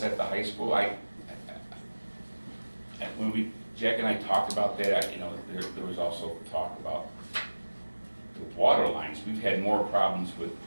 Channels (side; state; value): both; inverted; correlation -1.00